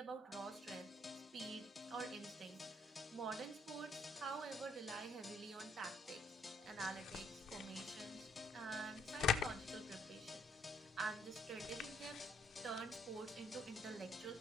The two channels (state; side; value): normal; both; correlation 0.69